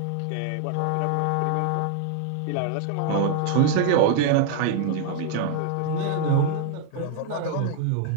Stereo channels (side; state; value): both; different; correlation 0.00